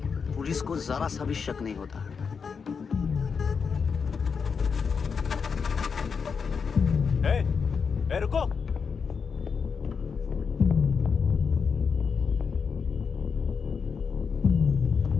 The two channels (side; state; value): right; quieter; 5.8 dB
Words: पुलिस को जरा सा भी शक नहीं होता। ए, रुको।